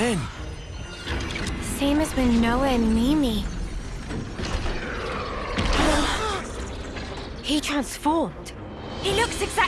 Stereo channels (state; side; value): identical; both; correlation 1.00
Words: Same as when Noah and Mimi. He transformed. He looks